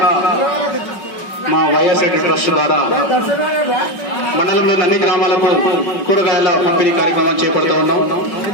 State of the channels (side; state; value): right; late; 5.3 ms